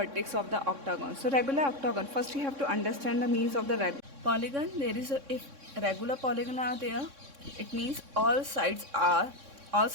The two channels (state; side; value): late; left; 3.6 ms